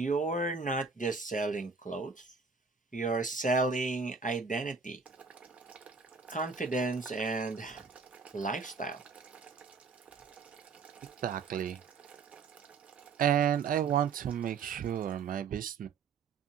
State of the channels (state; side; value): quieter; left; 5.1 dB